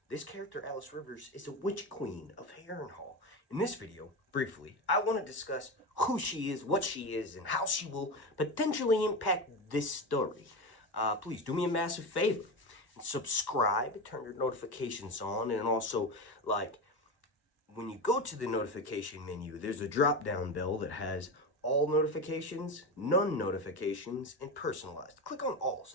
This character, Alys Rivers, is a witch queen of Harrenhal. In this video, briefly, I want to discuss who she is, what she is, and how she will potentially impact this story. Please do me a massive favor and subscribe, turn your notifications on, and also, like, when you go to the notification menu, there's a drop-down bell that has all notifications, none notifications, and personalized. Click on all,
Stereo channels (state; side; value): late; right; 1.1 ms